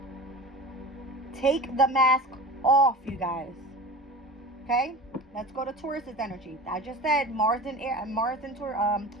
Take the mask off, you guys. Okay? Let's go to Taurus's energy. I just said Mars and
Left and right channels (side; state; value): both; normal; correlation 0.33